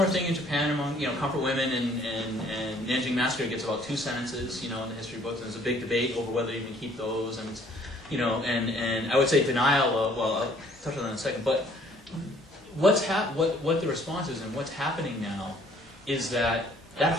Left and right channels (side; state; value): both; normal; correlation 0.60